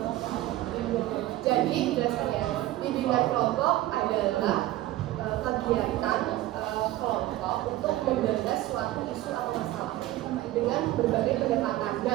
Jadi jelaskan ya. Bimbingan kelompok adalah kegiatan kelompok untuk menggagas suatu isu atau masalah dengan berbagai pendekatan.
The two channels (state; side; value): quieter; left; 15.8 dB